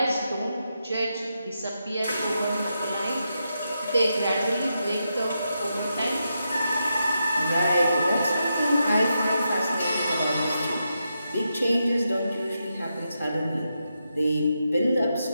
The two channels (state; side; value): inverted; both; correlation -0.85